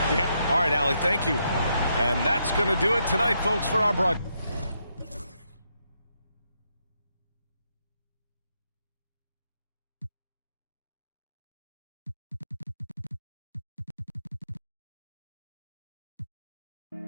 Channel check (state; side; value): inverted; both; correlation -0.79